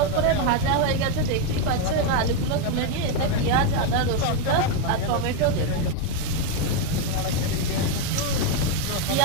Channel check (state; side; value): different; both; correlation 0.02